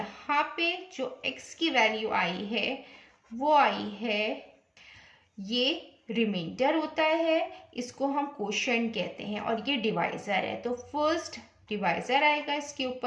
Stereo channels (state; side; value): identical; both; correlation 1.00